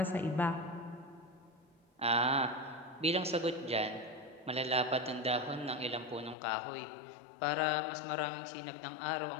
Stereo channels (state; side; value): drops out; right; at 6.4 s